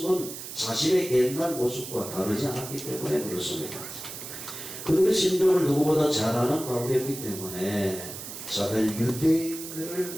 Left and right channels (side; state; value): right; noise; hiss, 10 dB below the sound